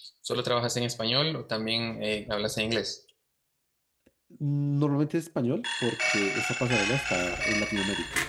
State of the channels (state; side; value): identical; both; correlation 1.00